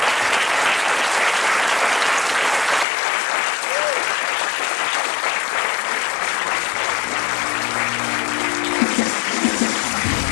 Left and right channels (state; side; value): drops out; right; at 2.9 s